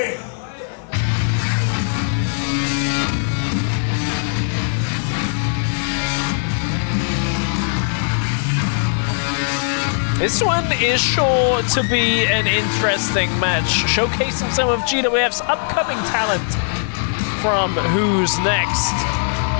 This one is sure to be an interesting match, showcasing some of GWF's upcoming talent from Who's Next.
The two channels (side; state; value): right; silent; 57 dB below the other